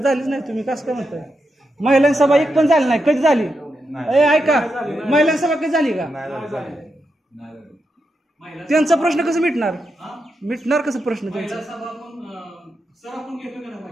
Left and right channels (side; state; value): both; normal; correlation 0.86